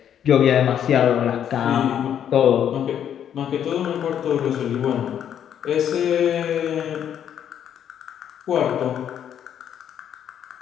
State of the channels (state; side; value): quieter; right; 9.4 dB